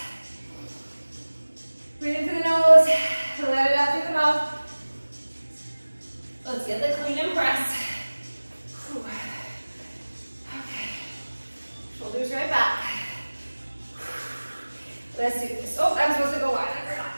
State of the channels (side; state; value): both; inverted; correlation -1.00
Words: Breathe in through the nose. Let it out through the mouth. Let's get the clean and press. Whew. Okay. Let's do this. Oh, I'm supposed to go wide. We're not.